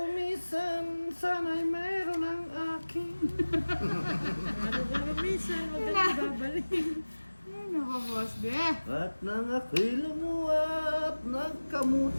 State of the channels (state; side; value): inverted; both; correlation -1.00